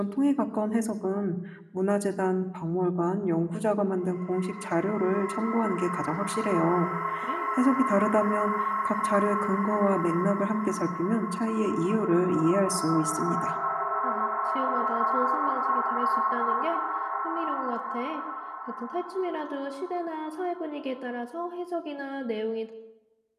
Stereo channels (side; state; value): both; identical; correlation 1.00